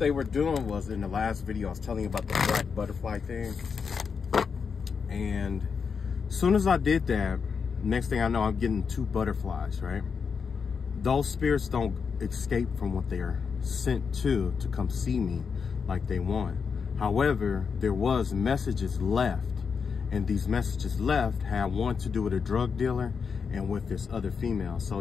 were doing was, in the last video, I was telling you about the black butterfly thing. And as soon as I did that, next thing I know, I'm getting 2 butterflies, right? Those spirits don't escape from what they are sent to come see me like they want. However, there was messages left, and these messages left had one to do with a drug dealer and with this other female.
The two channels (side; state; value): right; quieter; 5.9 dB